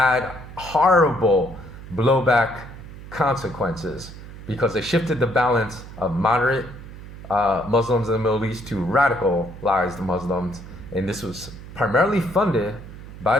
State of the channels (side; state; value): right; noise; hum, 14 dB below the sound